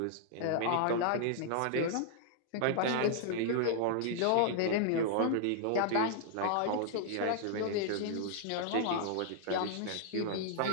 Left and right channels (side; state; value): both; different; correlation -0.01